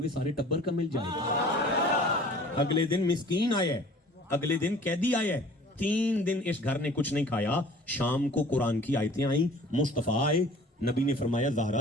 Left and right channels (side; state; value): both; normal; correlation 0.48